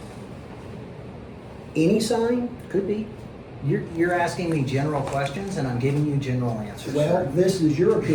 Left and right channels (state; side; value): identical; both; correlation 1.00